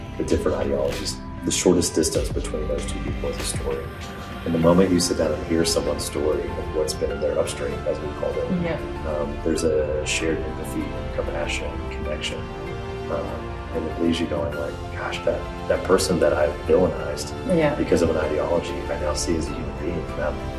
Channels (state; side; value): identical; both; correlation 1.00